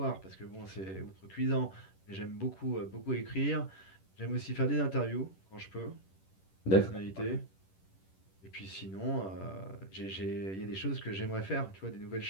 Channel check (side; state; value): right; late; 10 ms